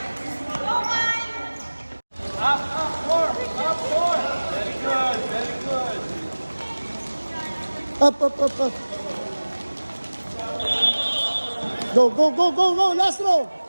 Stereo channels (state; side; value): inverted; both; correlation -1.00